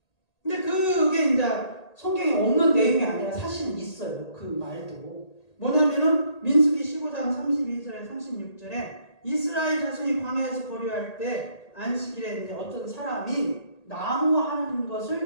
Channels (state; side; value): late; right; 1.8 ms